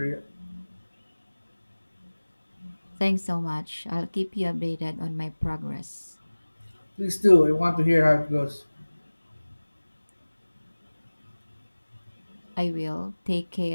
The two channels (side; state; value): both; inverted; correlation -1.00